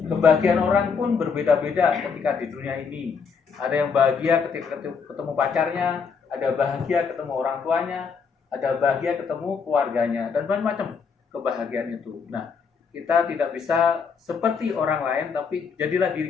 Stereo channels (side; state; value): right; quieter; 5.8 dB